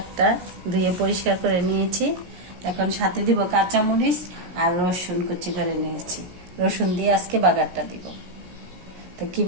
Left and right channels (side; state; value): left; late; 17 ms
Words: ধুয়ে পরিষ্কার করে নিয়েছি। এখন সাথে দিব কাঁচামরিচ আর রসুন কুচি করে নিয়েছি। রসুন দিয়ে আজকে বাগারটা দিব। তো